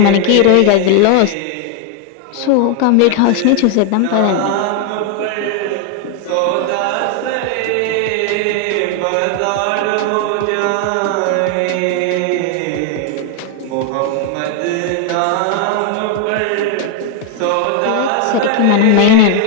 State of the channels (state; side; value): different; both; correlation 0.01